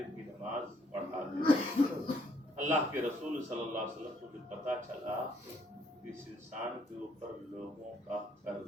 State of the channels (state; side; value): normal; both; correlation 0.68